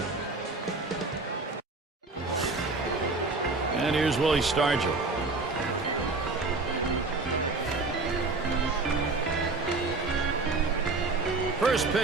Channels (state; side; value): quieter; left; 3.6 dB